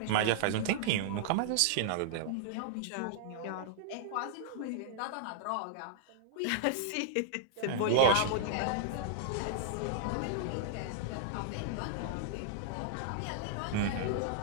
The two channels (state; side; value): different; both; correlation -0.01